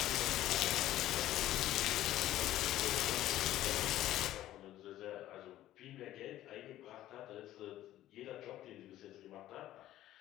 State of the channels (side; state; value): right; quieter; 13.9 dB